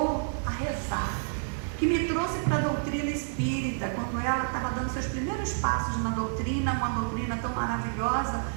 a rezar, que me trouxe para a doutrina espírita, quando ela estava dando seus primeiros passos na doutrina, uma doutrina tão maravilhosa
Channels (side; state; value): left; silent; 58 dB below the other